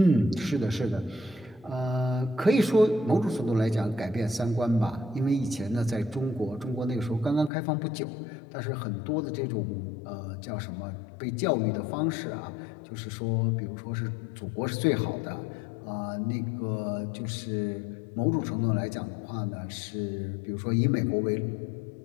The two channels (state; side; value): drops out; right; at 7.5 s